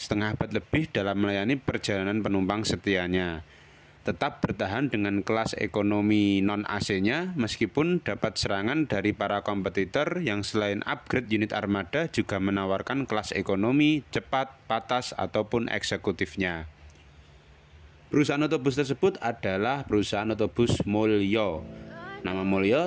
abad lebih dalam melayani perjalanan penumpang setianya. Tetap bertahan dengan kelas ekonomi non-AC-nya meskipun dapat serangan dari para kompetitor yang selain upgrade unit armada juga menawarkan kelas ekonomi, cepat, patas, ataupun eksekutifnya. Perusahaan otobus tersebut adalah perusahaan otobus Mulyo. Nama Mulyo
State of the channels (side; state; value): both; identical; correlation 1.00